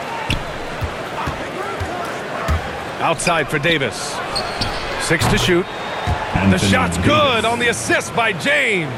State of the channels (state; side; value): identical; both; correlation 1.00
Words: Outside for Davis. 6 to shoot. And the shot's good on the assist by James.